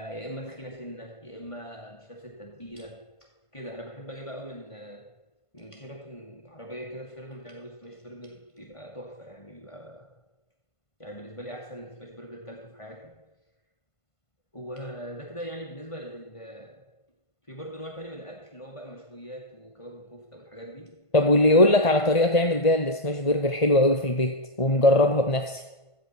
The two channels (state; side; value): late; right; 1.5 ms